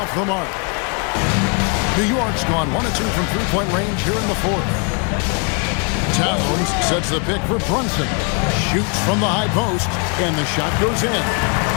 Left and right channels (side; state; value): right; quieter; 37.5 dB